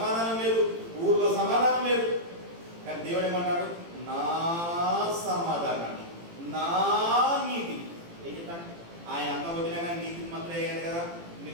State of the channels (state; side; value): late; left; 18 ms